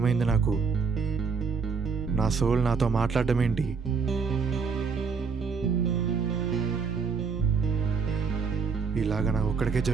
నాకు? నా సోల్ నాతో మాట్లాడడం ఏంటి? ఇలాగ నాకు ఒక్కడికే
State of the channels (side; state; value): left; quieter; 5.3 dB